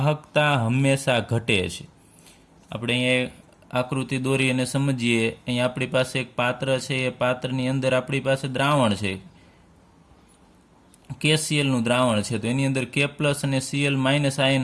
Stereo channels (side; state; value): both; identical; correlation 1.00